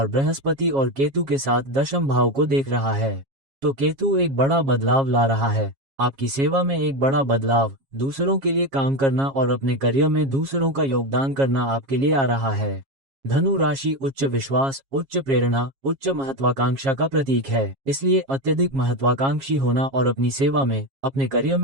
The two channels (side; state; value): left; late; 7.3 ms